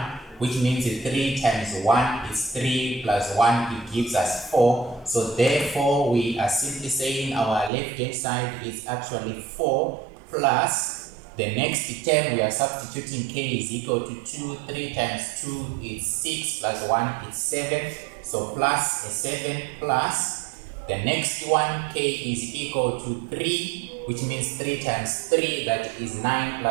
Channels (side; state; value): left; drops out; at 7.7 s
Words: which means 3 times 1 is 3 plus 1, it gives us 4. So therefore, we are simply saying our left-hand side is actually 4 plus the next term, we are substituting k is equal to 2. 3 times 2 is 6 plus 1 is 7. So plus a 7 plus the next one, k is equal to 3, which means 3 times 3, that is 9